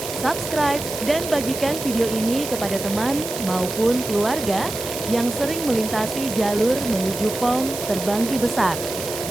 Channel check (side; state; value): right; noise; hiss, 8 dB below the sound